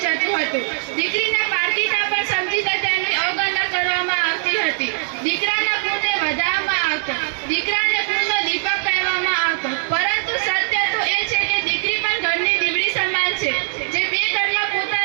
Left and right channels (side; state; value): left; silent; digital silence